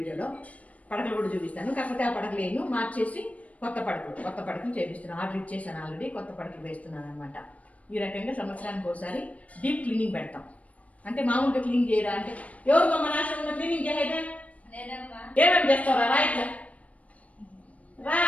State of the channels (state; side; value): late; right; 0.067 ms